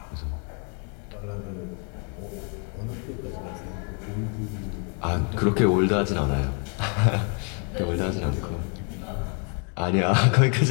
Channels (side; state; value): right; quieter; 39.7 dB